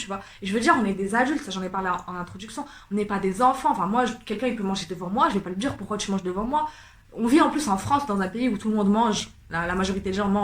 vois. Et je veux dire, on est des adultes, ça j'en ai parlé en introduction, on n'est pas des enfants. Enfin, moi, quelqu'un il peut manger devant moi, je vais pas lui dire pourquoi tu manges devant moi. On vit en plus en France, dans un pays où tout le monde mange, la majorité des gens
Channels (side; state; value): both; identical; correlation 1.00